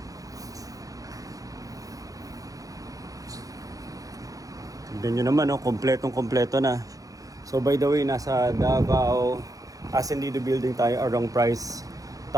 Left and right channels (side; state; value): left; late; 0.17 ms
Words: Tignan nyo naman, no? Kompletong-kompleto na. So by the way, nasa Davao Ascendido building tayo along Price